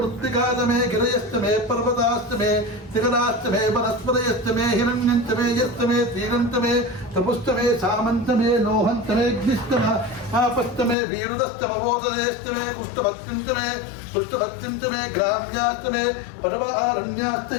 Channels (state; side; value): drops out; right; at 11.0 s